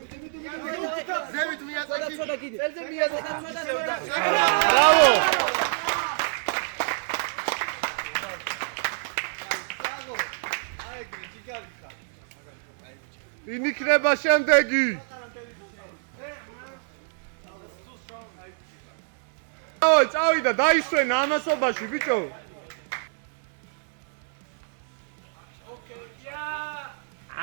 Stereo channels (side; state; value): left; silent; digital silence